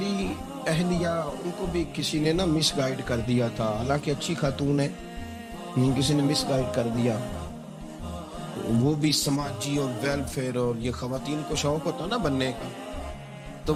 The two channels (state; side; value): identical; both; correlation 1.00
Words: اہلیہ، ان کو بھی کسی نے نا مس گائیڈ کر دیا تھا، حالانکہ اچھی خاتون ہے، کسی نے مس گائیڈ کر دیا. وہ بھی سماجی اور ویلفیئر، اور یہ خواتین کو شوق ہوتا نا بننے کا، تو